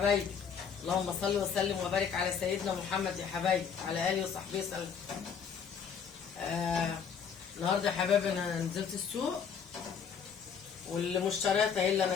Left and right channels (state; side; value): quieter; right; 6.9 dB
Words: اللهم صل وسلم وبارك على سيدنا محمد يا حبايبي، على اله وصحبه وسلم. النهارده يا حبايبي انا نزلت السوق والمشتريات اهي اللي انا